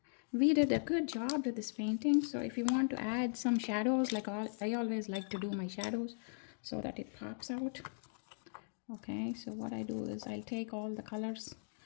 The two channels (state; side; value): silent; right; digital silence